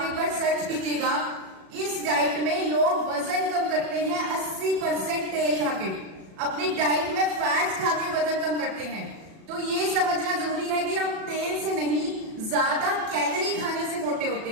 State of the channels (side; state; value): left; late; 37 ms